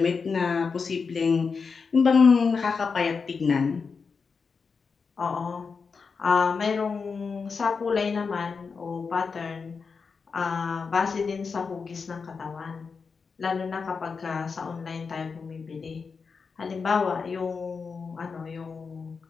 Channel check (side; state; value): right; quieter; 5.2 dB